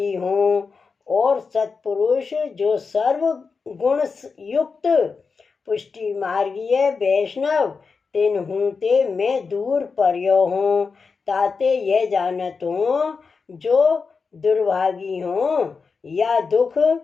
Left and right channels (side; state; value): right; quieter; 4.9 dB